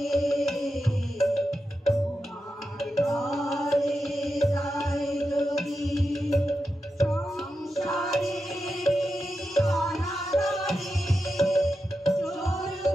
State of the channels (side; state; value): both; normal; correlation 0.89